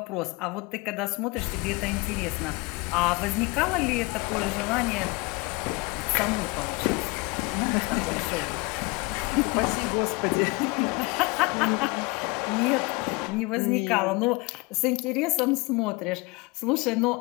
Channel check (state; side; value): quieter; right; 26.0 dB